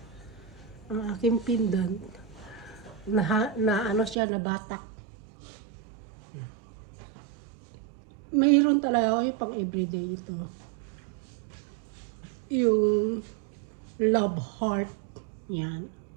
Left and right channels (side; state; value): left; drops out; at 4.2 s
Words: Ang aking pindan. Siya, nabatak. Mayroon talaga ako yung pang everyday ito. Yung love heart. Yan.